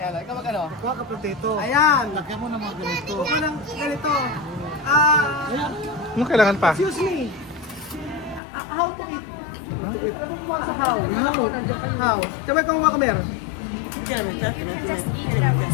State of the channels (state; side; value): drops out; right; at 8.4 s